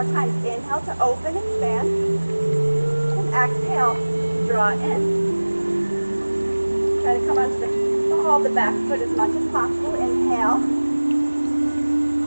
times. Inhale to open, expand. And exhale, draw in. Try to come onto the ball of the back foot as much as possible. Inhale.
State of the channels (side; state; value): both; inverted; correlation -1.00